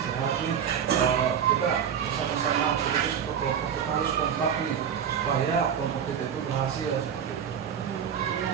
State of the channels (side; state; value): left; quieter; 8.2 dB